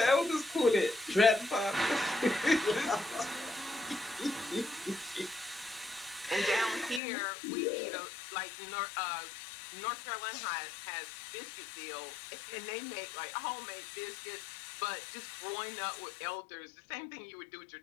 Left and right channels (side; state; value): right; drops out; at 7.0 s